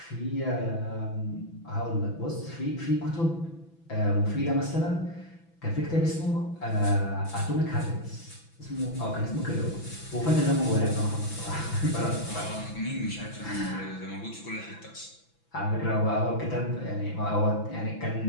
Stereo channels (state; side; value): late; right; 6.0 ms